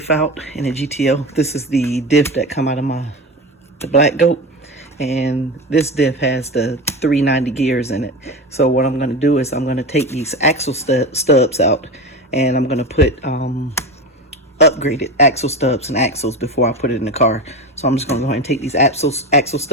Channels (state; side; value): normal; both; correlation 0.24